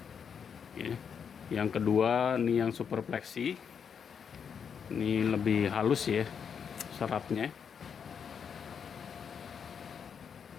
Ya. Yang kedua ini yang Super Plexi. Ini lebih halus ya seratnya.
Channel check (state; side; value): quieter; right; 7.1 dB